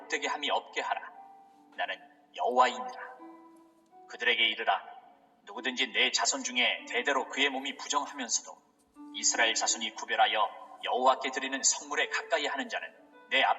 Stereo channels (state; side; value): identical; both; correlation 1.00